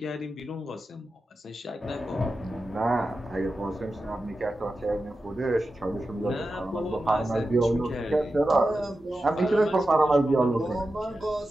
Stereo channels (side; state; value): both; normal; correlation 0.92